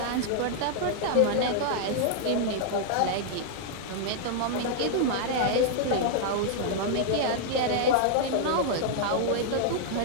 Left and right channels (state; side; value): different; both; correlation -0.01